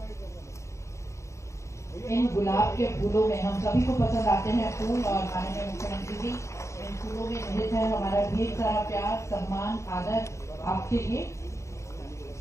इन गुलाब के फूलों में हम सभी को पसंद आते हैं फूल, और माननीय मुख्यमंत्री जी इन फूलों में निहित है हमारा ढेर सारा प्यार, सम्मान, आदर आपके लिए।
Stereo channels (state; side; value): late; right; 0.14 ms